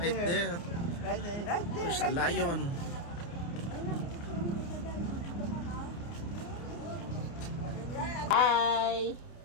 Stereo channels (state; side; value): late; right; 29 ms